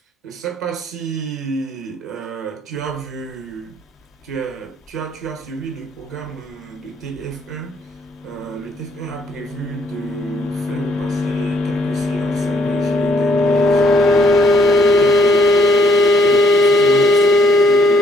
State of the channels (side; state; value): both; normal; correlation 0.67